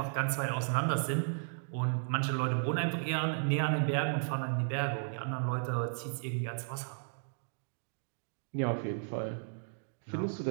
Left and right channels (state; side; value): silent; left; digital silence